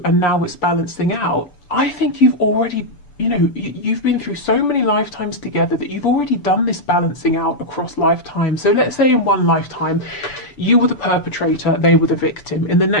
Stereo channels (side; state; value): right; late; 6.9 ms